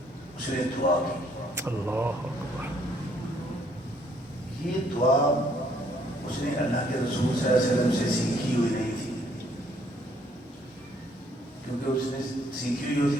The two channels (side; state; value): both; normal; correlation 0.66